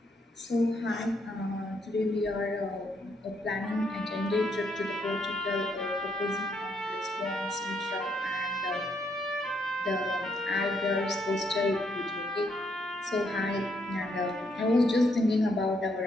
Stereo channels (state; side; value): normal; both; correlation 0.74